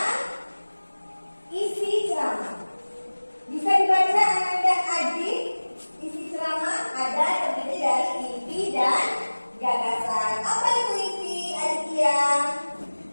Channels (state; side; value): inverted; both; correlation -1.00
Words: isi ceramah. Bisa dibaca Anda adik. Isi ceramah ada terdiri dari inti dan gagasan. Apa itu inti, Aditya?